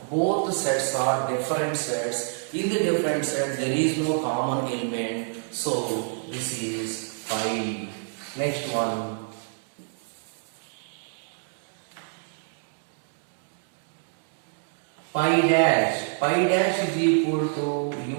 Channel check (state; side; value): silent; left; digital silence